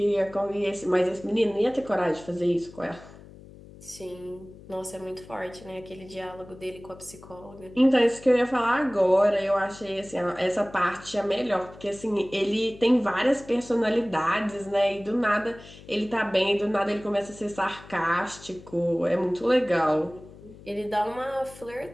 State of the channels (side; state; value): left; noise; hum, 19 dB below the sound